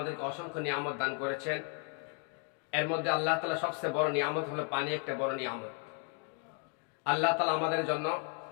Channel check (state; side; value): quieter; right; 36.3 dB